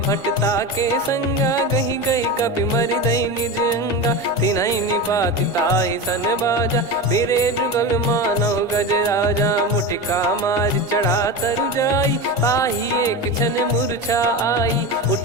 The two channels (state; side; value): normal; both; correlation 0.23